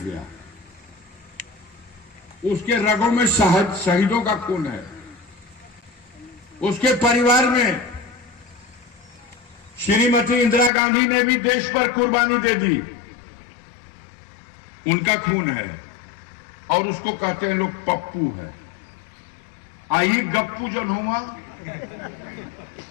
गया। उसके रगों में शहीदों का खून है। उसके परिवार में श्रीमती इंदिरा गांधी ने भी देश पर कुर्बानी दे दी। उनका खून है और उसको कहते हैं लोग पप्पू है। आई गप्पू जो हुआ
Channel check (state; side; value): drops out; right; at 10.7 s